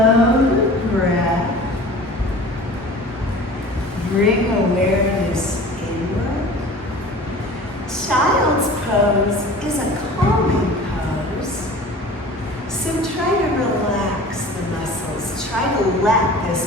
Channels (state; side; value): normal; both; correlation 0.41